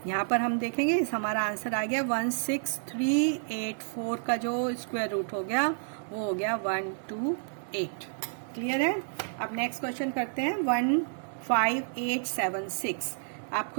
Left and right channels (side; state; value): left; silent; digital silence